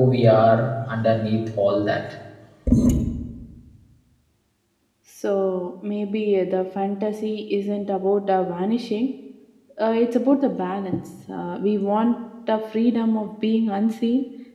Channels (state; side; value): identical; both; correlation 1.00